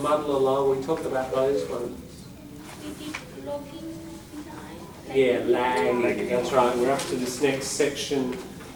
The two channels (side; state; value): both; identical; correlation 1.00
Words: muddle along, we talked about those ones. Yeah, lagging, that's right. We're up to this next section